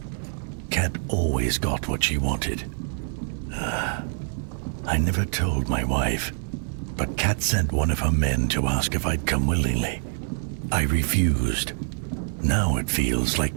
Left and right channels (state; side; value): silent; left; 61 dB below the other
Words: always got what she wanted. I never told my wife, but Kat sent one of her men to ask if I'd come willingly. I refused. Now it feels like